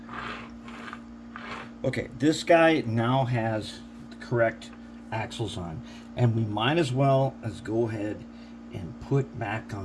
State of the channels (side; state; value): both; identical; correlation 1.00